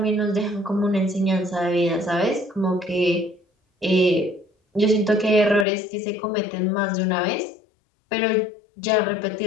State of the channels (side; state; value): right; drops out; at 5.7 s